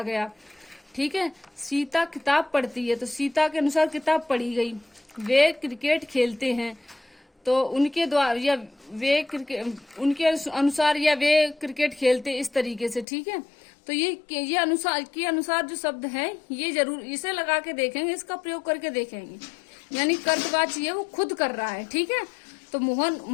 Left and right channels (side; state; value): right; drops out; at 13.1 s